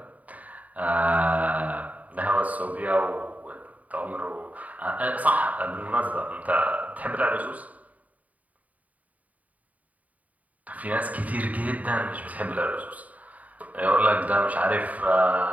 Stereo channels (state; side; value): late; left; 0.072 ms